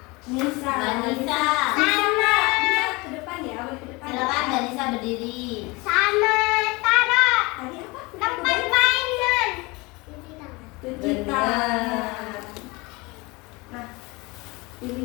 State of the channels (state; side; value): quieter; right; 25.0 dB